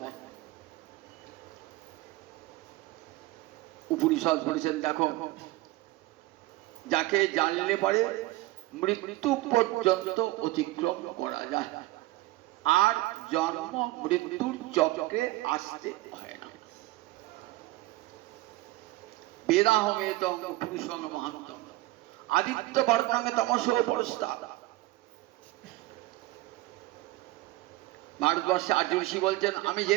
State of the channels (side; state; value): left; quieter; 18.5 dB